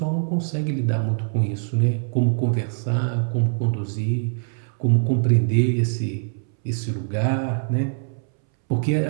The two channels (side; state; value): left; silent; 63 dB below the other